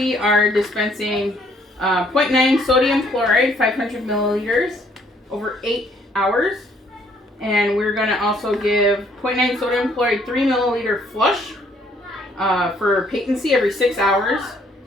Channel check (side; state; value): both; normal; correlation 0.65